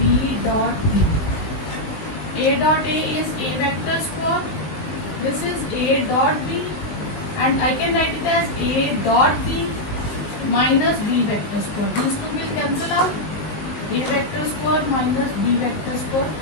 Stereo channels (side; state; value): right; late; 19 ms